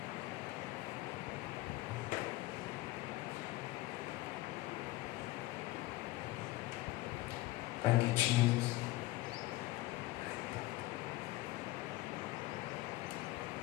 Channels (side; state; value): right; quieter; 18.3 dB